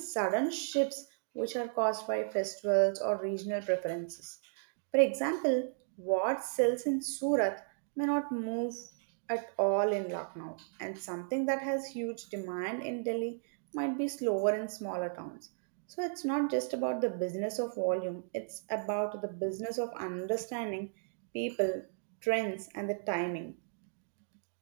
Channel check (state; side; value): silent; left; digital silence